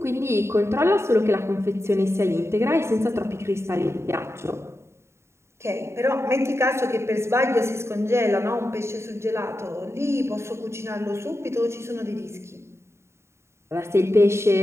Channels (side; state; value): left; late; 0.13 ms